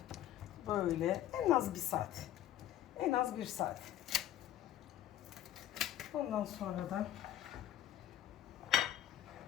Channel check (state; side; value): quieter; right; 12.1 dB